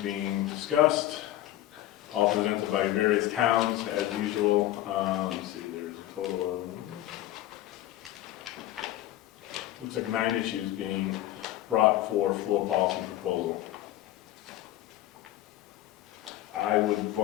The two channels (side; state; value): right; quieter; 14.4 dB